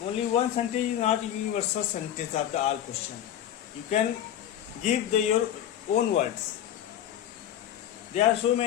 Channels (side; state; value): right; quieter; 10.8 dB